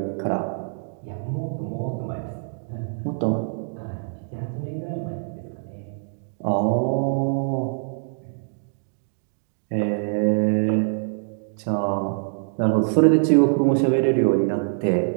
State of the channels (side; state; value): left; silent; digital silence